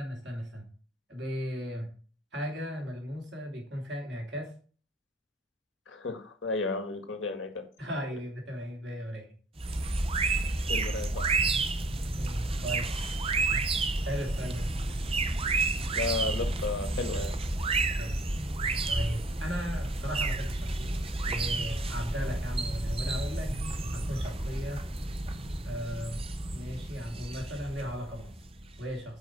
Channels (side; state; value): both; normal; correlation 0.58